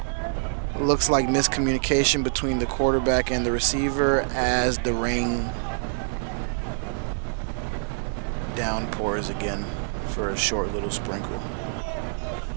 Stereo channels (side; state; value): left; silent; digital silence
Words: Looks like miscommunication between the quarterback and the receiver as the rain downpours again for a short little sprinkle.